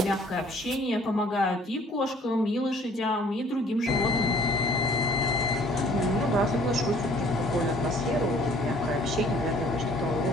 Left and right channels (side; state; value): both; normal; correlation 0.56